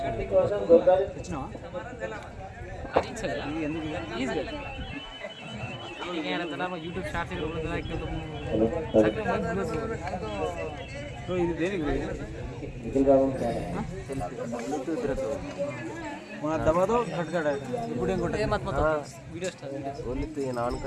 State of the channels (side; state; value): both; identical; correlation 1.00